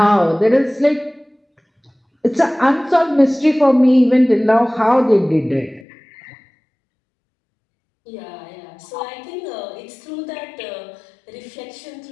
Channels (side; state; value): right; drops out; at 5.9 s